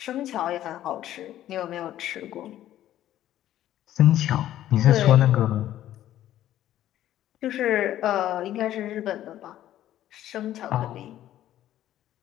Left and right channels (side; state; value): right; quieter; 12.7 dB